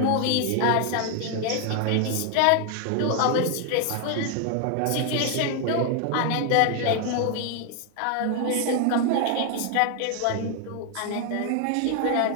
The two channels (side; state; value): both; different; correlation 0.00